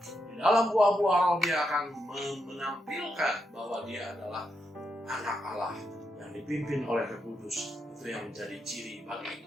Di dalam buah-buah roh dia akan menampilkan bahwa dia adalah anak Allah yang dipimpin oleh Roh Kudus. Itu yang menjadi ciri bagi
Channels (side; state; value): both; normal; correlation 0.82